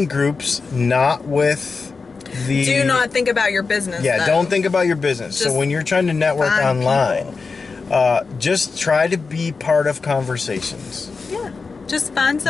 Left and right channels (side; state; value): right; quieter; 4.6 dB